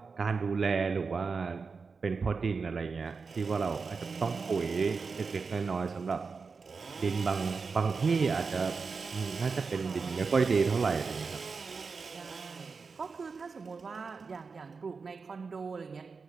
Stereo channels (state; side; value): quieter; left; 4.8 dB